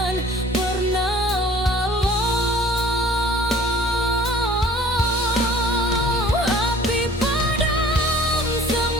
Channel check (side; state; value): both; normal; correlation 0.50